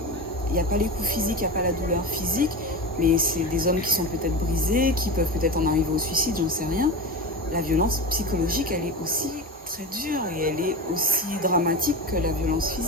il n'y a pas les coups physiques, il n'y a pas la douleur physique, mais c'est des hommes qui sont peut-être brisés, qui peuvent peut-être en arriver au suicide, j'en sais rien. La violence psychologique, elle est aussi très dure et elle est aussi dramatique que la violence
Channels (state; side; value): normal; both; correlation 0.24